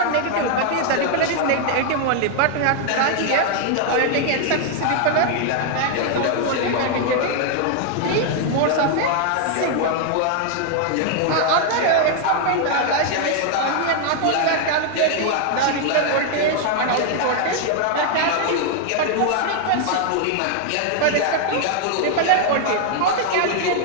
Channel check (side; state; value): both; different; correlation 0.00